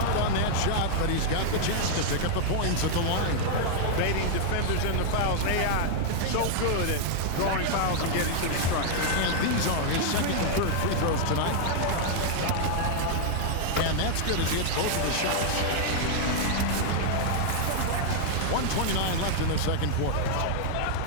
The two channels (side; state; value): both; different; correlation -0.01